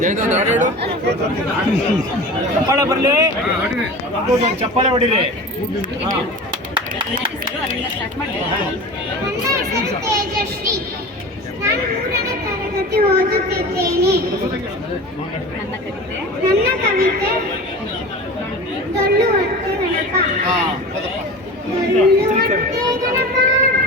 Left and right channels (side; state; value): both; normal; correlation 0.34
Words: ಚಪ್ಪಾಳೆ ಬರಲಿ ಚಪ್ಪಾಳೆ ಹೊಡಿರಿ ತೇಜಶ್ರೀ, ನಾನು 3ನೇ ತರಗತಿ ಓದುತ್ತಿದ್ದೇನೆ. ನನ್ನ ಕವಿತೆ ಡೊಳ್ಳು ಹೊಟ್ಟೆ ಗಣಪ. ಡೊಳ್ಳು ಹೊಟ್ಟೆ ಗಣಪ,